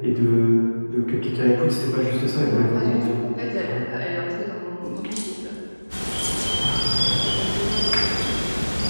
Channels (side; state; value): both; inverted; correlation -1.00